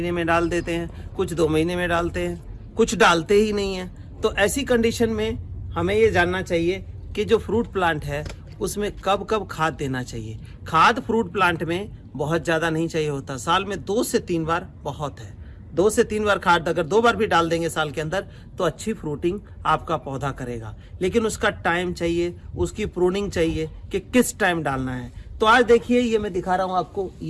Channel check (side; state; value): both; identical; correlation 1.00